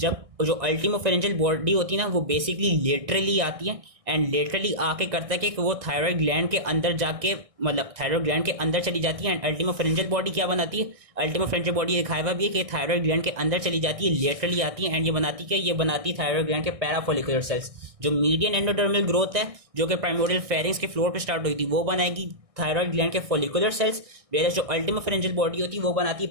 जो अल्टीमा फेरेंजियल बॉडी होती है ना वो बेसिकली लेटरली आती है एंड लेटरली आके करता है कि वो थायराइड ग्लैंड के अंदर जाके मतलब थायराइड ग्लैंड के अंदर चली जाती है। एंड अल्टीमा फेरेंजियल बॉडी क्या बनाती है, अल्टीमा फेरेंजियल बॉडी दिखाया हुआ भी है कि थायराइड ग्लैंड के अंदर चली जाती है, लेटरली आती है एंड ये बनाती है, ये बनाती है थायराइड ग्लैंड के पैराफोलिकुलर सेल्स। जो मीडियन एंडोडर्मल ग्रोथ है जो कि प्राइमोरियल फेरिंग्स के फ्लोर पे स्टार्ट हुई थी वो बनाएगी थायराइड ग्लैंड के फॉलिकुलर सेल्स, वेयर जो अल्टीमा फेरेंजियल बॉडी होती है वो बनाती है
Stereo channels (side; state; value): left; late; 1.6 ms